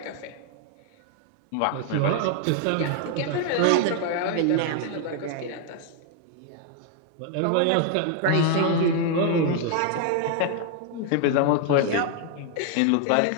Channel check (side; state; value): both; different; correlation 0.00